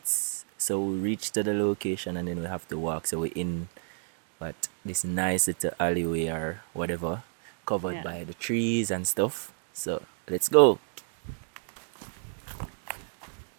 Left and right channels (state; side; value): silent; left; digital silence